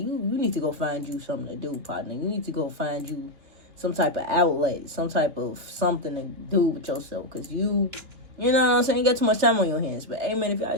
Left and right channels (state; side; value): late; left; 3.0 ms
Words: you need to go find you something to do, partner. You need to go find you some type of outlet, some type of something to do with yourself. Because you know what I'm saying? You got too much time on your hands. But, hey, man, if y'all